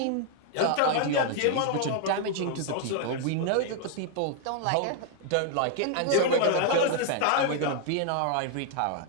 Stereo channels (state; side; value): different; both; correlation 0.00